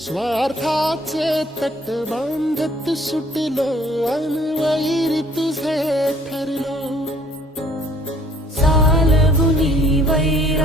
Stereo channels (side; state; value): both; normal; correlation 0.58